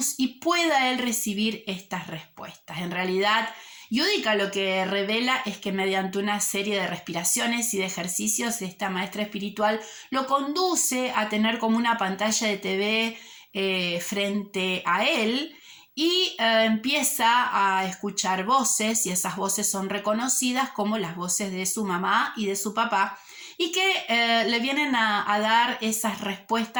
y pueda él recibir estas respuestas. En realidad, Yudica lo que revela es que mediante una serie de respiraciones y de ejercicios, esta maestra espiritual lo conduce a tener como una pantalla de TV frente a él y empieza a escuchar voces, y esas voces son reconocidas como las voces de su mamá y de su papá, y que le vienen a dar esas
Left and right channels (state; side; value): identical; both; correlation 1.00